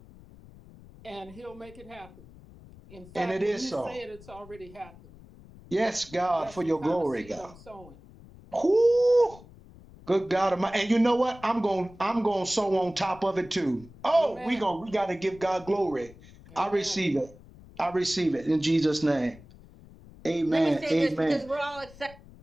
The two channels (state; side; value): noise; left; rumble, 21 dB below the sound